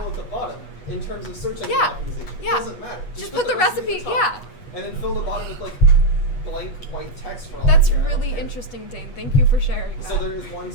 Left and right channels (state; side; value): late; right; 8.3 ms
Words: at the bottom in terms of search engine Yeah. optimization. Yeah. It doesn't matter. Just put the recipe. at the Yeah. top, and then fill the bottom with like blank white text for all That's you care. I don't really care. interesting, Dane. Thank you for sharing that. So there is one